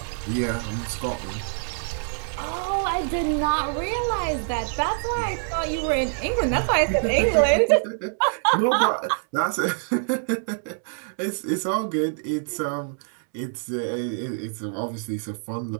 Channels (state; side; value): silent; left; 62 dB below the other